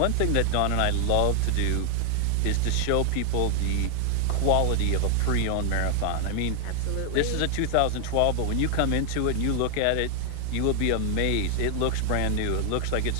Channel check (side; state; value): both; different; correlation 0.00